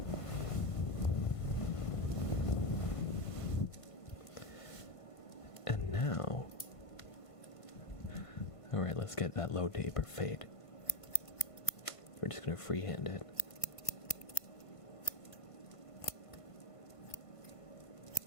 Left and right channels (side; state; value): right; late; 1.5 ms